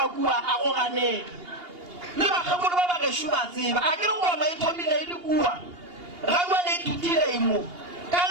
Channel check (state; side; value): late; left; 2.8 ms